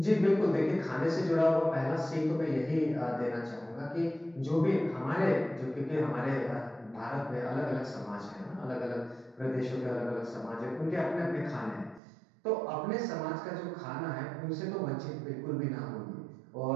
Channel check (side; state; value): left; drops out; at 12.0 s